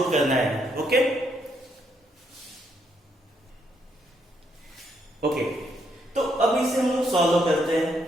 करना है। ओके ओके, तो अब इसे हम लोग सॉल्व करते हैं।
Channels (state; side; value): normal; both; correlation 0.74